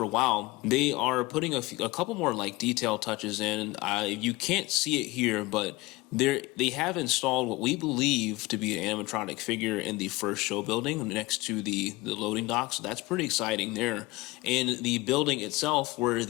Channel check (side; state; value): right; quieter; 21.3 dB